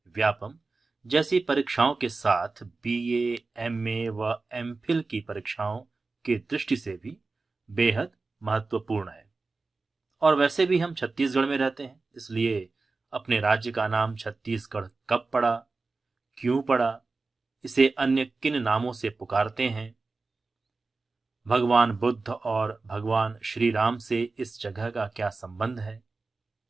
व्यापम जैसी परीक्षाओं के साथ बीए, एमए व एमफिल की परीक्षाओं की दृष्टि से भी बेहद महत्वपूर्ण है। और वैसे भी हम छत्तीसगढ़ में रहते हैं, इसलिए अपने राज्य का नाम छत्तीसगढ़ कब पड़ा, क्यों पड़ा, इसे अन्य किन नामों से पुकारते हैं, भगवान बुद्ध और भगवान श्री राम से इस जगह का क्या संबंध है,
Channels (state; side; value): quieter; left; 3.8 dB